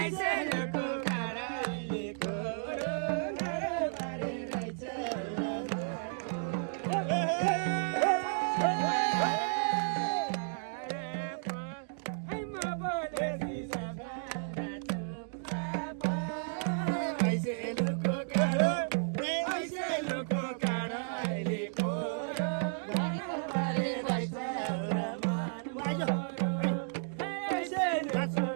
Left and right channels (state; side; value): silent; left; digital silence